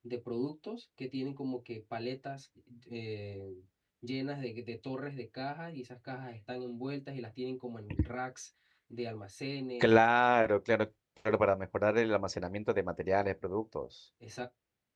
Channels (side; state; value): both; identical; correlation 1.00